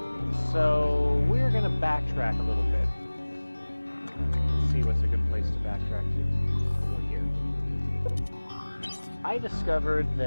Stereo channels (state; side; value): inverted; both; correlation -1.00